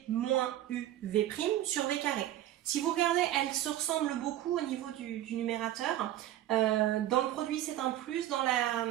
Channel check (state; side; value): quieter; left; 13.2 dB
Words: moins UV' sur V carré. Si vous regardez, elles se ressemblent beaucoup au niveau du numérateur. Dans le produit, c'est un plus, dans